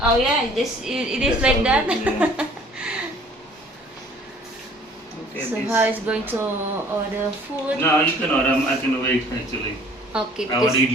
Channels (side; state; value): both; normal; correlation 0.53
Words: Oh yeah, it is That's like how that. good, yeah. Okay, So this- how is going to order food? No, you can order. I can wait actually. Okay, I want because to eat